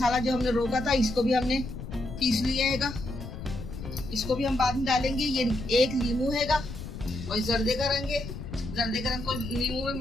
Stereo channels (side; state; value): left; noise; rumble, 9 dB below the sound